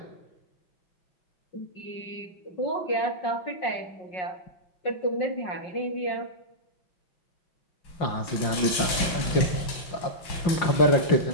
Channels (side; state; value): right; late; 5.9 ms